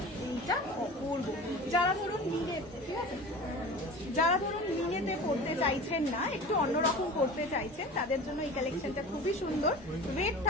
এইটা অপূর্ব। যারা ধরুন মিনেতে পড়তে চাইছেন না, একটু অন্যরকম করতে চাইছেন, তাদের জন্য এই কালেকশনটা খুবই সুন্দর। ওয়েট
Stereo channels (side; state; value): both; normal; correlation 0.36